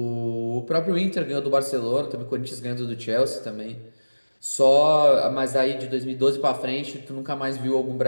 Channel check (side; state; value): both; inverted; correlation -1.00